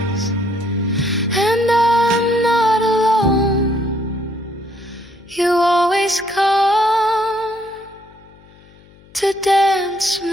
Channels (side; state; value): left; noise; hum, 26 dB below the sound